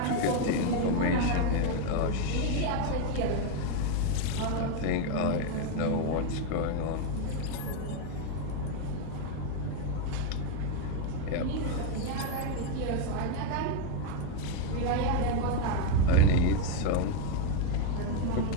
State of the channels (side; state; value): both; different; correlation 0.01